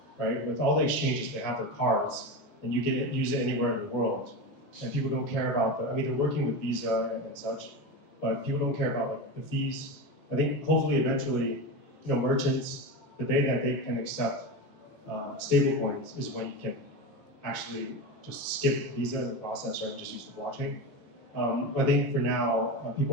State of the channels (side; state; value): both; normal; correlation 0.21